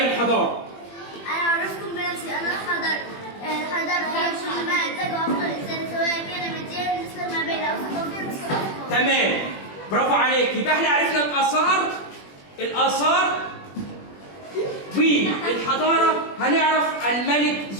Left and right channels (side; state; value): right; late; 21 ms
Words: الحضارة. أنا أعرفكم بنفسي، أنا الحضارة هي كل ما أنتجه أفضل الإنسان سواء كان من جهة بالنسبة ما بين أوسط وفي مصر. تمام، برافو عليك. يبقى احنا عرفنا الآثار والحضارة. هنعرف الملك